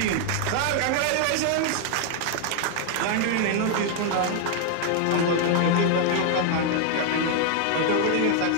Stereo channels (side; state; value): both; different; correlation 0.00